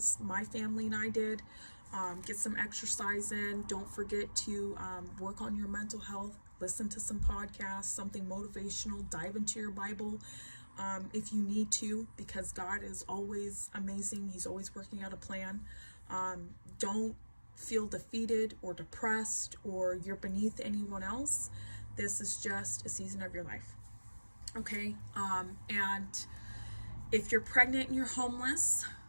My family and I did. Get some exercise in. Don't forget to work on your mental health. Listen to some podcasts, something motivational. Dive into your Bible if you need to, because God is always amazing. He's always working out a plan. Don't feel defeated or depressed or you're beneath anyone else. This is just a season of your life. Okay? And if you're pregnant and you're homeless,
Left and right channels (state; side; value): inverted; both; correlation -1.00